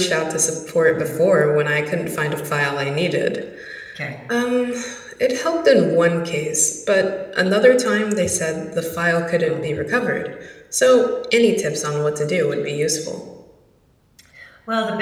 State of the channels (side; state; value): both; identical; correlation 1.00